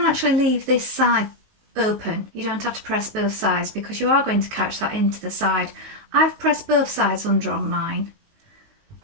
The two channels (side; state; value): left; late; 19 ms